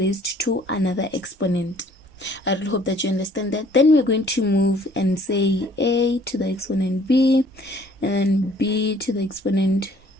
to another exponent. I really hope that you understand that. Then we're going to move and say a to the exponent b, and then b to the exponent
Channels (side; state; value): both; normal; correlation 0.58